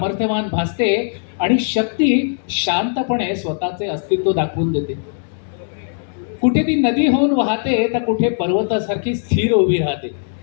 भासते आणि शक्ती शांतपणे स्वतःचे अस्तित्व दाखवून देते. कुठे ती नदी होऊन वाहते तर कुठे पर्वतासारखी स्थिर उभी राहते.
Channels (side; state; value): right; silent; digital silence